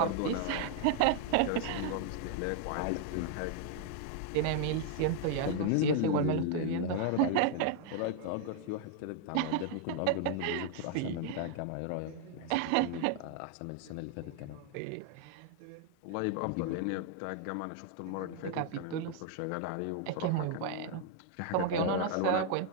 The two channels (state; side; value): different; both; correlation 0.00